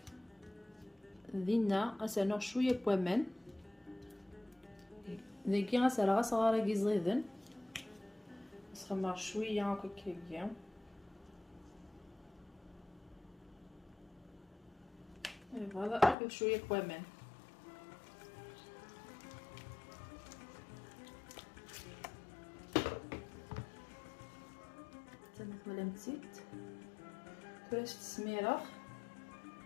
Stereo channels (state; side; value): drops out; right; at 16.2 s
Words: دينا غنسنو شويه بوامان ذاكي غنسرا صغار كي زيدن نسخمر شويه هكا كيا. فوالا اخذ شويه بوامان. تمت ولا مزيت كراش السميره.